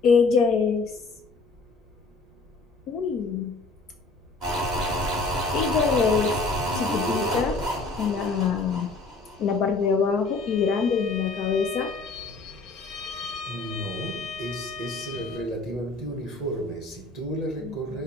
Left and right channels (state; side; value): quieter; right; 3.7 dB